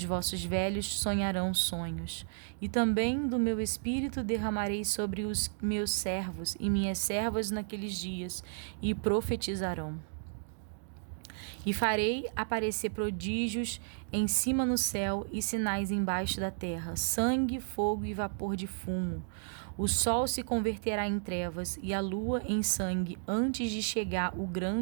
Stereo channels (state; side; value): silent; left; digital silence